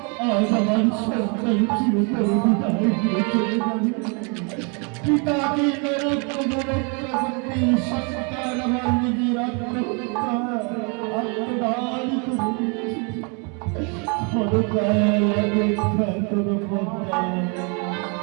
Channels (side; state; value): left; quieter; 35.2 dB